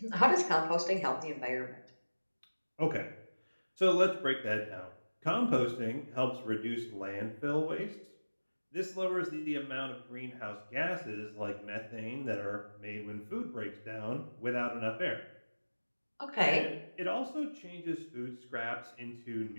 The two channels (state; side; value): inverted; both; correlation -1.00